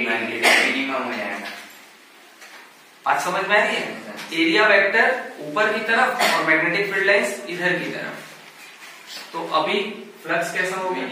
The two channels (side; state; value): both; identical; correlation 1.00